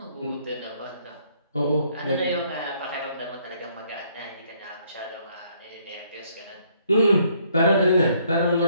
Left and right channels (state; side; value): inverted; both; correlation -0.67